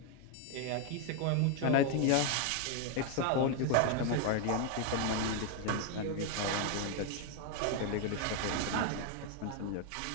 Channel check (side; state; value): both; different; correlation 0.01